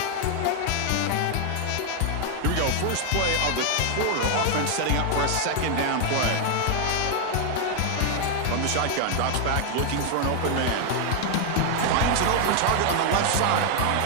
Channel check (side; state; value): both; different; correlation 0.00